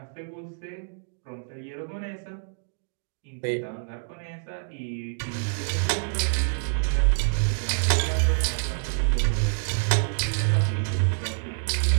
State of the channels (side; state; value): left; silent; digital silence